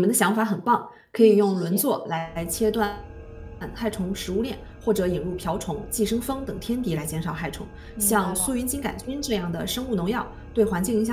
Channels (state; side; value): identical; both; correlation 1.00